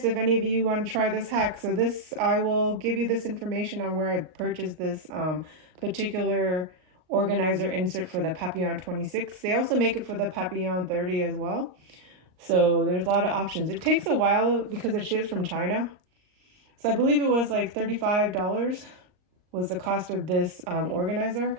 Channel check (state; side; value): late; left; 38 ms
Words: if any of you want to try this hack. So I will give you this information on where I purchased this particular organizer insert for the Papillon 26. They also make it for the Papillon 30 as well. So there's a lot of options. It takes a while because it ships from China. So I believe it was like $35 was the cost of this organizer.